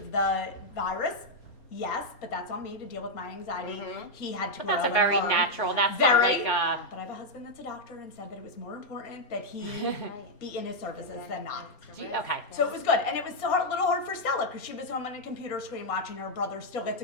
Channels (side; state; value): right; late; 4.3 ms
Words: the virus? Yes, but that's on me to deal with my anxiety. He had to But grow that's a and very learn. natural. That's Very. not like. But I have a husband that's a doctor and said that it was more important that he be in his services than not. Okay. So it was good, and it was a little hard for Stella because she was home on a computer screen watching her brother still get to